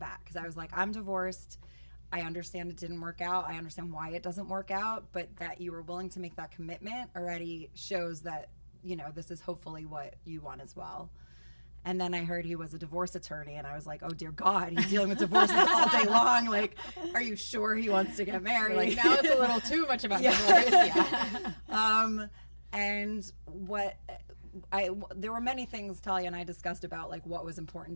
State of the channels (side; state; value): both; inverted; correlation -1.00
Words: because I was like, I'm divorced. I understand it didn't work out. I understand why it doesn't work out, but that you were willing to make that commitment already shows that, you know, this is hopefully what you want as well. And then I heard he was a divorce attorney, and I was like, oh, dear God, he's dealing with divorces all day long. Like, are you sure he wants to get married? Like, now it's a little too much about divorce. And there were many things Talia and I discussed about, like, what was